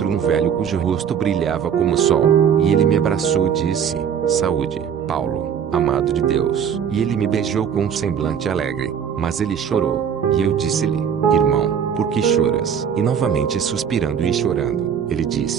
um velho cujo rosto brilhava como o sol, e ele me abraçou e disse: Saúde, Paulo, amado de Deus. E ele me beijou com um semblante alegre, mas ele chorou. E eu disse-lhe: Irmão, por que choras? E novamente suspirando e chorando, ele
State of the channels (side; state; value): left; quieter; 7.9 dB